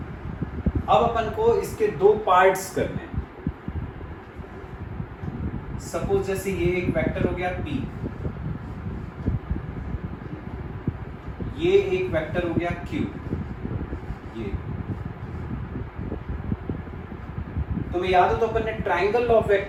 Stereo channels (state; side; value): identical; both; correlation 1.00